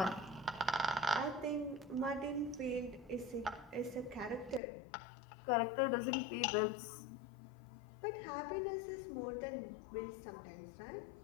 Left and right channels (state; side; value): drops out; right; at 4.6 s